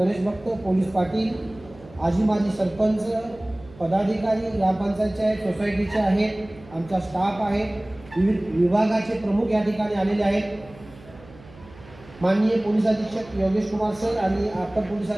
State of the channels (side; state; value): right; noise; hum, 21 dB below the sound